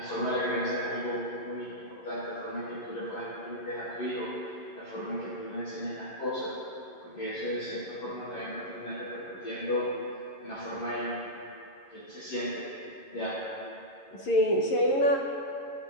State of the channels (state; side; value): late; right; 11 ms